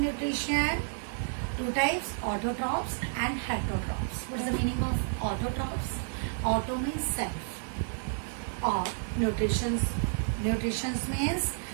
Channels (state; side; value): silent; left; digital silence